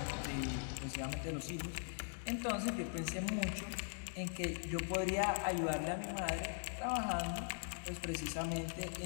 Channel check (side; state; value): right; silent; digital silence